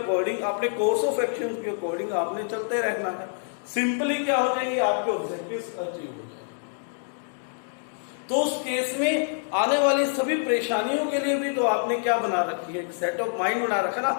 अपने कोर्स ऑफ एक्शन के अकॉर्डिंग आपने चलते रहना है। सिंपली क्या हो जाएंगे, आपके ऑब्जेक्टिव्स अचीव हो जाएंगे। तो उस केस में आने वाली सभी परेशानियों के लिए भी तो आपने क्या बना रखी है, एक सेट ऑफ माइंड बना रखा ना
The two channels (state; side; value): silent; right; digital silence